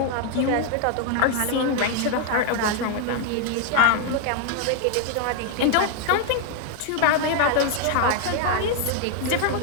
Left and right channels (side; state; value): both; different; correlation 0.00